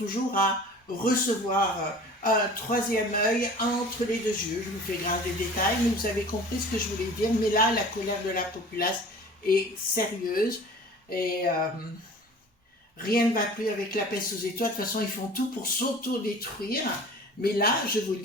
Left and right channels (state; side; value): normal; both; correlation 0.43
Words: à recevoir un troisième œil entre les deux yeux. Je vous fais grave des détails, mais vous avez compris ce que je voulais dire. Mais là, la colère de la populace est sérieuse et rien ne va plus avec la peste aux étoiles. De toute façon, ils font tout pour s'auto-détruire. Mais là, je vous